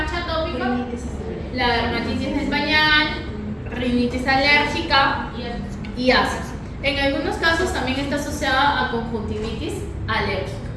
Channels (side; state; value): both; identical; correlation 1.00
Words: atópica? La dermatitis del pañal, rinitis alérgica y asas. En algunos casos también está asociada a conjuntivitis alérgica.